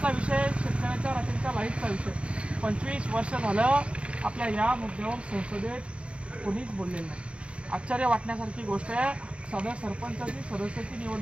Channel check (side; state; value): left; late; 0.059 ms